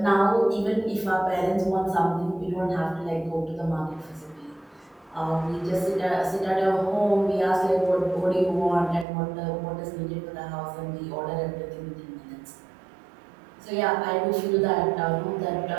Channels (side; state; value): left; drops out; at 9.1 s